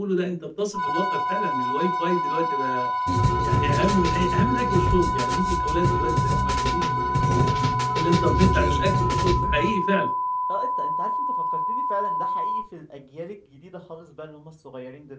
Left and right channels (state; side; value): identical; both; correlation 1.00